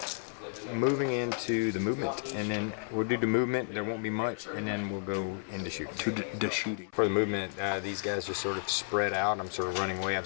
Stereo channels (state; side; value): silent; right; 56 dB below the other